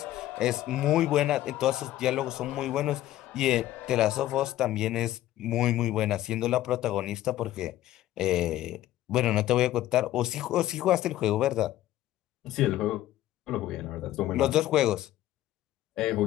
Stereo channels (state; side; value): quieter; right; 14.2 dB